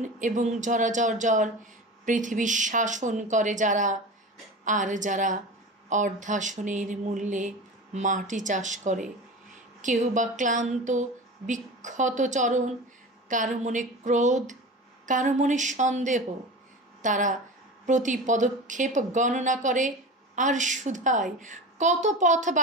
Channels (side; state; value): both; normal; correlation 0.31